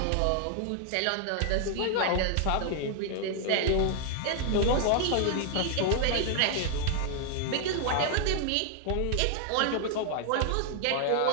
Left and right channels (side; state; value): both; different; correlation 0.00